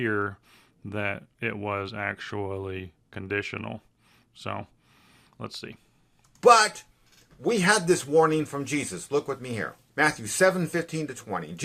that it was actually conditional. So let's see. But we had this warning from Jesus. Look with me here. Matthew 7:15-20.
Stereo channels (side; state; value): both; identical; correlation 1.00